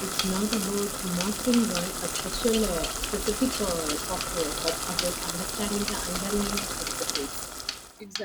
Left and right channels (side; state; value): both; identical; correlation 1.00